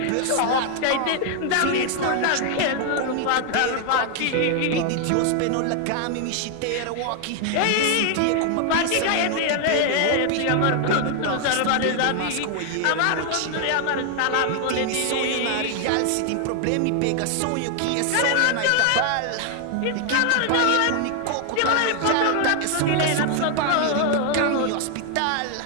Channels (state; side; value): different; both; correlation 0.00